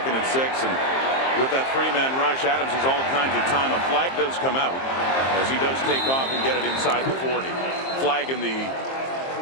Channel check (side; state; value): right; late; 23 ms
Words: and 6, and with that three-man rush, Adams has all kinds of time. A flag does come out as he does take off and get it inside the 40. Flag in the